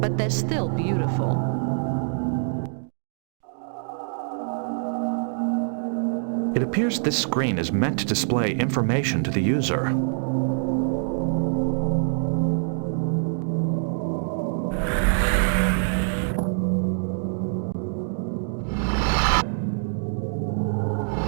they're still beautiful. It appears this screen is meant to display information to the user.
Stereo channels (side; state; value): left; silent; digital silence